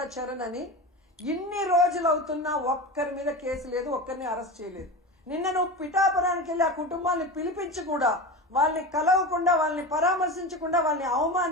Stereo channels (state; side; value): normal; both; correlation 0.26